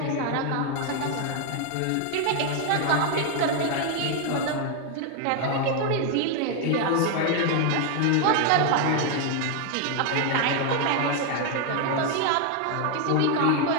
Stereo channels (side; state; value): both; different; correlation 0.01